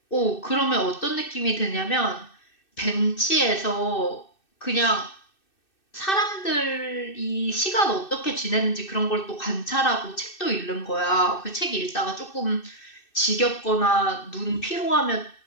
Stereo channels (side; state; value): right; late; 2.6 ms